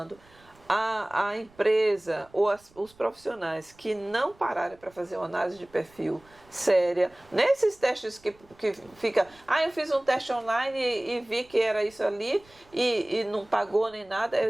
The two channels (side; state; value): right; noise; rumble, 29 dB below the sound